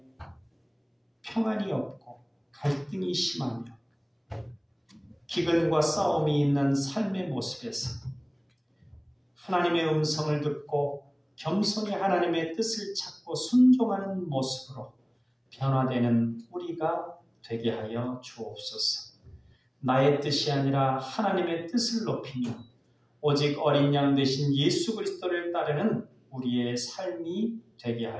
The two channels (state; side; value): identical; both; correlation 1.00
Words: 평안이 없고 갈등이 심하며 기근과 싸움이 있는 삶의 모습에서 하나님의 음성을 듣고 겸손히 하나님의 뜻을 찾고 순종하는 모습으로 변화되는 우리가 되게 하여 주옵소서. 나의 뜻이 아니라 하나님의 뜻을 높이며 오직 어린 양 되신 예수 그리스도를 따르는 우리의 삶이 되게